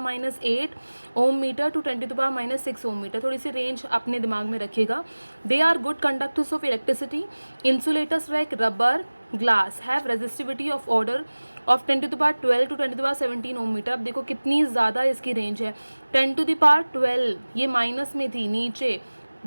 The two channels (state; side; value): inverted; both; correlation -1.00